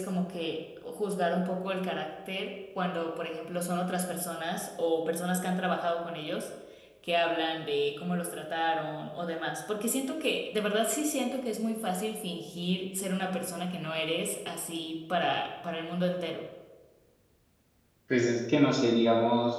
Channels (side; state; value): both; identical; correlation 1.00